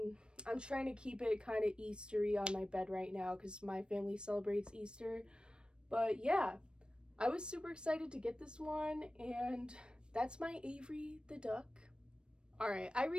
I'm trying to keep it kind of Eastery on my bed right now because my family celebrates Easter. But yeah, I was super excited to get this one, and that's my Avery the duck. Alright, I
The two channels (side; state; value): left; late; 0.054 ms